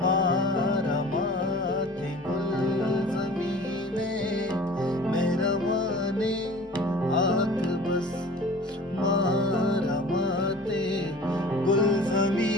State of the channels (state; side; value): normal; both; correlation 0.44